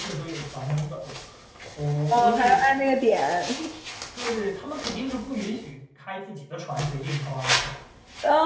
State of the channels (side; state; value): both; identical; correlation 1.00